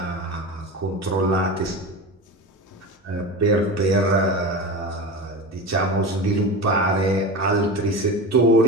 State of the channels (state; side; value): normal; both; correlation 0.27